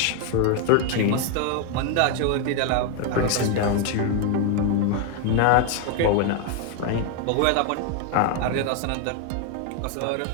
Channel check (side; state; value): both; different; correlation 0.01